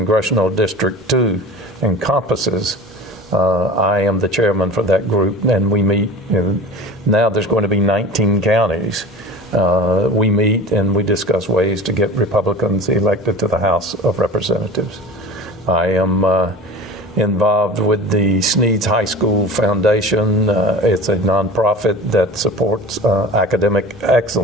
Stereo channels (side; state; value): both; normal; correlation 0.36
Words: District 2 encompasses. I am the chairman for that group, and we meet, now there's going to be 19 counties. We meet and we discuss ways to get Republicans elected to the House of Representatives. I am involved with the Sneads High School Foundation. It's a nonprofit that supports academic